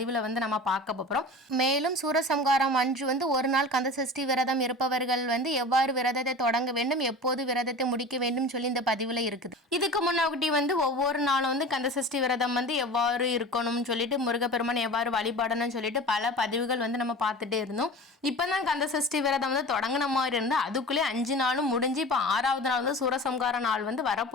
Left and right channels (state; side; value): normal; both; correlation 0.35